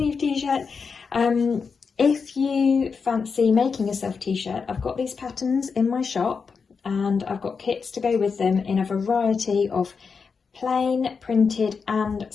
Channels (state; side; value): quieter; right; 5.4 dB